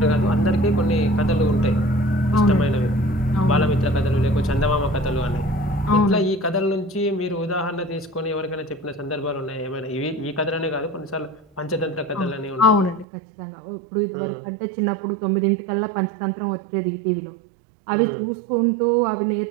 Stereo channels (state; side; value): drops out; left; at 13.1 s